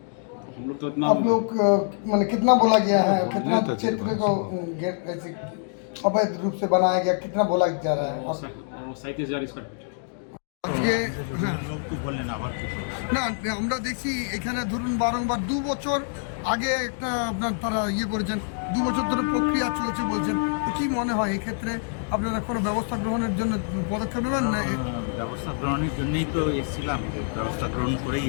तो हम लोग तो इतना आप लोग मैंने कितना बोला गया है, कितना तो क्षेत्र को ऐसे अवैध रूप से बनाया गया, कितना बोला जा रहा है? 37,000 स्क्वायर फीट। আজকে হ্যাঁ না, আমরা দেখছি এখানে ধরুন বারংবার 2 বছর আগে একটা আপনার তারা ইয়ে করেছেন, 2 বছর ধরে প্রক্রিয়া চলছে বলছেন। কি মনে হয় এই ক্ষেত্রে আপনারা কোনো ব্যবস্থা গ্রহণের জন্য পদক্ষেপ নেবেন না? ব্যবস্থা গ্রহণের জন্যই তো এসেছিলাম, ব্যবস্থা গ্রহণ করেই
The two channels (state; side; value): silent; right; digital silence